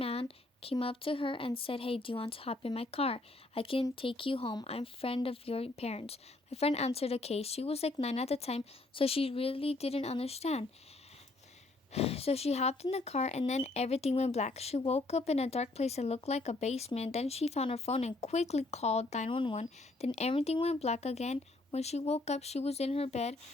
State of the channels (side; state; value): right; quieter; 3.0 dB